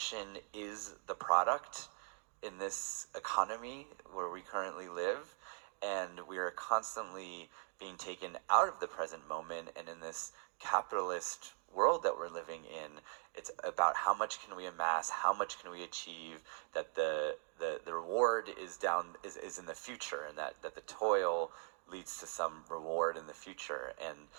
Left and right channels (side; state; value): left; silent; 51 dB below the other